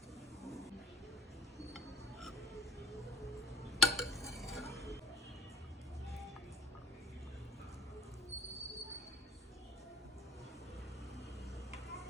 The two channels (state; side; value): normal; both; correlation 0.42